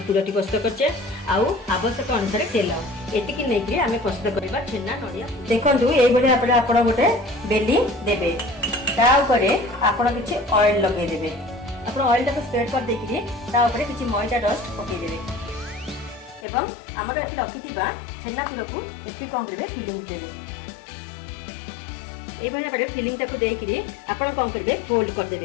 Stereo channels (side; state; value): right; drops out; at 16.4 s